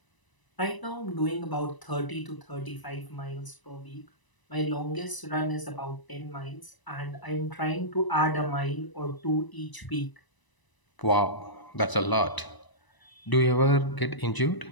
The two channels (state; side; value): late; right; 1.0 ms